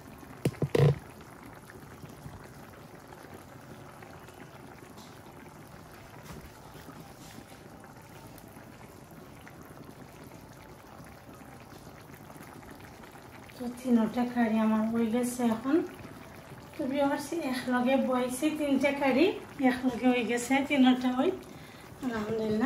তো 3টা কারি আমার হয়ে গেছে এখন। তো ভিউয়ার্স, একলগে বইছে 3টা কারি একলগে হয়ে গেছে, 3টা হই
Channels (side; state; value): both; identical; correlation 1.00